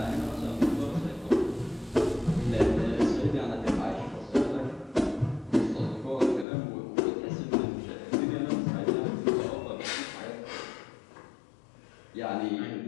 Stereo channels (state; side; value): drops out; right; at 6.5 s